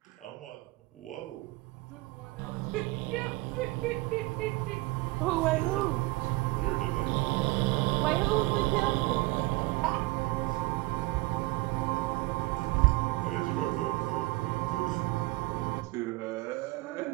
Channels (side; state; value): left; quieter; 22.2 dB